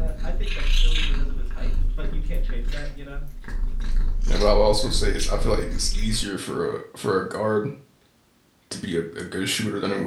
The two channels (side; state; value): both; identical; correlation 1.00